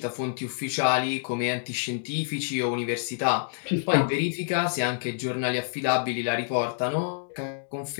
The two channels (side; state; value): right; silent; digital silence